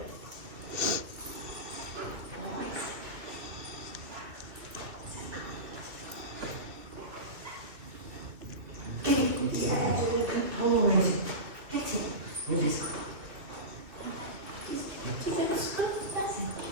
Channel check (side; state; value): left; late; 2.9 ms